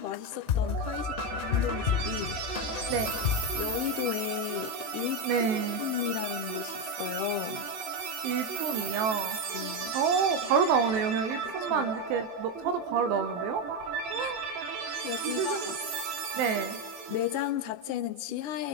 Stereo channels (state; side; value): late; left; 23 ms